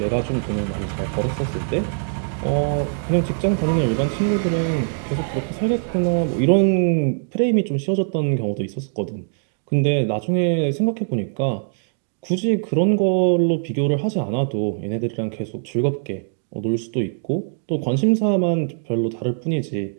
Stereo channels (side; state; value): left; silent; digital silence